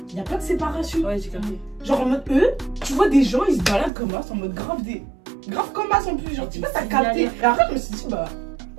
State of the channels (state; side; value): drops out; left; at 3.9 s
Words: il n'y a pas de séparation. Ouais, j'ai compris. Genre en mode eux, tu vois des gens, ils se baladent comme as, en mode grave comme as en plus. Genre, tu vois, t'as capté. Et après, je me suis dit, bah,